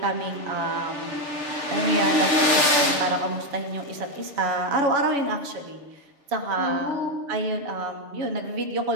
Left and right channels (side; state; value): left; late; 6.8 ms